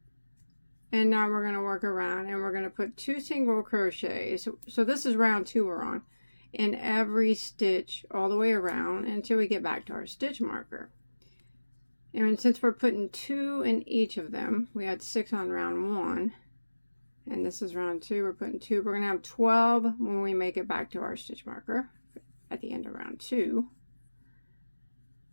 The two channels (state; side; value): inverted; both; correlation -1.00